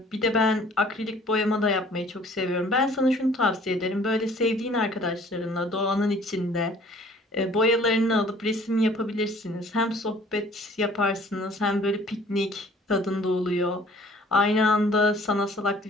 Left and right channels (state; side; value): normal; both; correlation 0.53